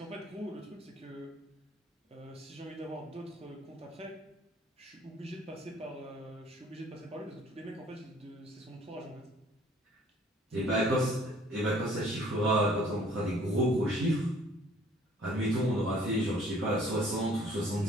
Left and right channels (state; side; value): normal; both; correlation 0.56